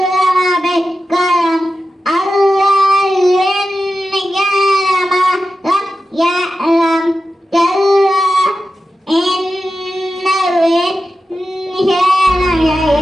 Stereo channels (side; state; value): both; normal; correlation 0.92